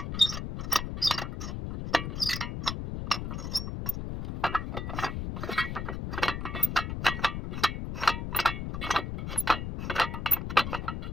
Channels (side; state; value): left; noise; rumble, 4 dB below the sound